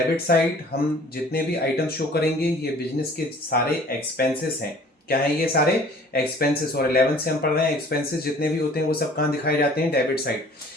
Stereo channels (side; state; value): both; normal; correlation 0.51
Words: साइड हम जितने भी आइटम शो करेंगे ये बिजनेस के सारे एक्सपेंसेस हैं। क्या है? ये सारे एक्सपेंसेस। और 11 से हम पढ़ रहे हैं, एक्सपेंसेस जितने भी होते हैं वो सब कहाँ दिखाए जाते हैं? Debit side.